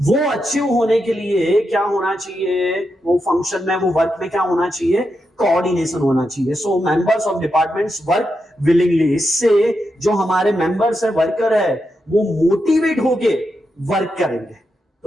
अचीव होने के लिए क्या होना चाहिए, वो फंक्शन में, वो वर्क में क्या होना चाहिए, कोऑर्डिनेशन होना चाहिए. So members of departments work willingly. इससे जो हमारे मेंबर्स है, वर्कर है, वो मोटिवेट होके वर्क करेंगे.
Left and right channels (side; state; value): both; normal; correlation 0.86